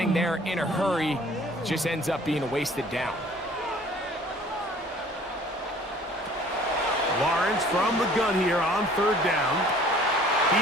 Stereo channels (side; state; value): both; normal; correlation 0.52